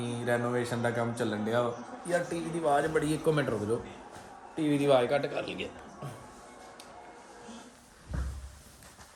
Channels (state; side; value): identical; both; correlation 1.00